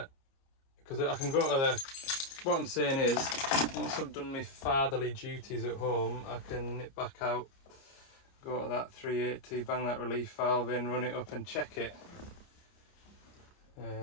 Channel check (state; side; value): late; right; 30 ms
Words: because I can go to the, what I'm saying is, once I've done my fatherly duties at home, I can nip back out, go to that 380, bang that relief valve in, run it up and check it.